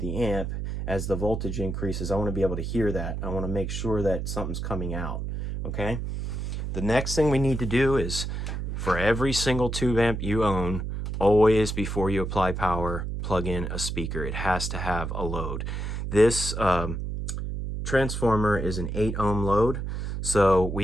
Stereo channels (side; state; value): right; noise; hum, 4 dB below the sound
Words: amp, as the voltage increases, I want to be able to hear that. I want to make sure that something's coming out, okay? The next thing we need to do is, for every single tube amp you own, always before you apply power, plug in a speaker. It has to have a load. This transformer is an 8 ohm load, so